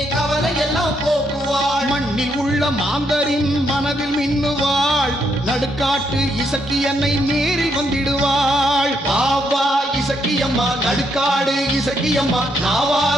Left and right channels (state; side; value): normal; both; correlation 0.76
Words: கவலை எல்லாம் போக்குவாள். மண்ணில் உள்ள மாந்தரின் மனதில் மின்னுவாள். நடுக்காட்டு இசக்கியன்னை நேரில் வந்திடுவாள். பாவா இசக்கியம்மா நடுக்காடு இசக்கியம்மா